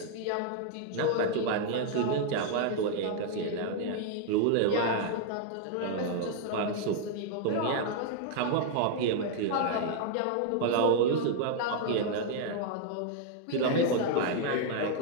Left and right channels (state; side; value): different; both; correlation 0.00